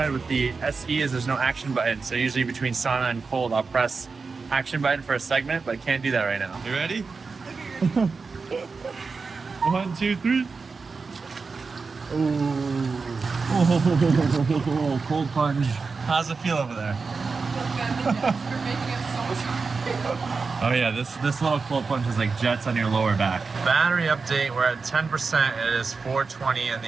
with the SE is there's no action button. So usually between sauna and cold, I'll press action button for a segment, but I can't do that right now. You ready? 1, 2, 3. Oh, cold plunge. How's it feel over there? Oh yeah, this little cold plunge is like jets on your lower back. Battery update, we're at 10%. It is 4:20 in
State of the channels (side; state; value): left; quieter; 4.6 dB